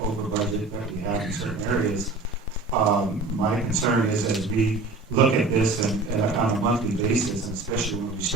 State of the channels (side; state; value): left; quieter; 3.4 dB